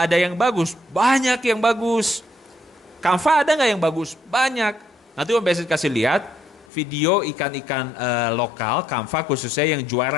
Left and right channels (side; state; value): right; drops out; at 6.7 s